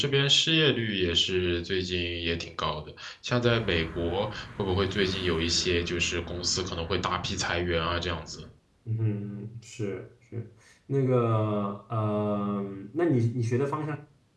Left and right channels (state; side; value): identical; both; correlation 1.00